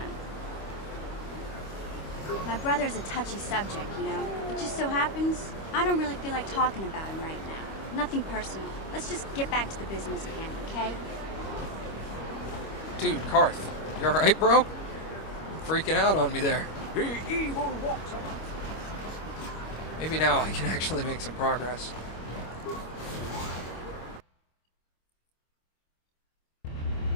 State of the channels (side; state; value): right; late; 25 ms